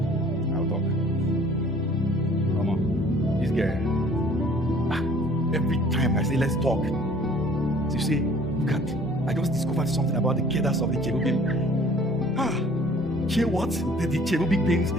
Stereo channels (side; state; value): both; normal; correlation 0.53